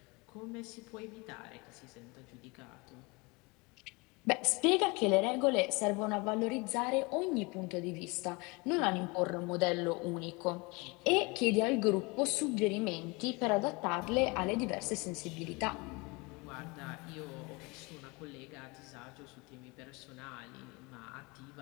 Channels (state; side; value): quieter; right; 27.0 dB